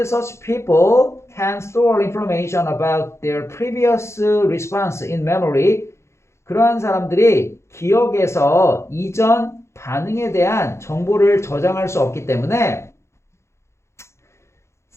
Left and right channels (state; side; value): late; right; 0.13 ms